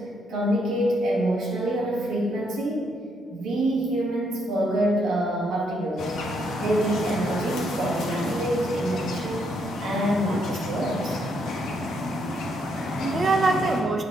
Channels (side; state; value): both; normal; correlation 0.75